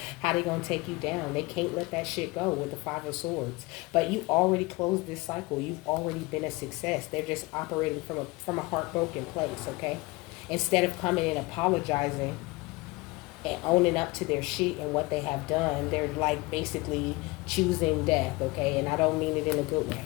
how they're going to take you down. They can't let that shit go with the Five of Swords. But you already closed this cycle. You've already been a success. They're just operating from a heartbroken place, okay? Instead of coming and apologizing and owning up to their shit and what they have done, they're like basically choosing death, okay? And I don't mean it in a good way.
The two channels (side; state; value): right; quieter; 23.3 dB